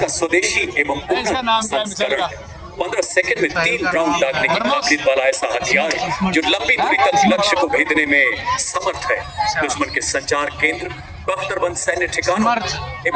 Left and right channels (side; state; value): both; identical; correlation 1.00